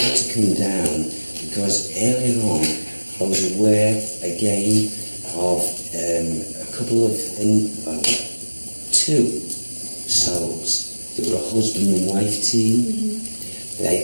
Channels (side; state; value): both; inverted; correlation -1.00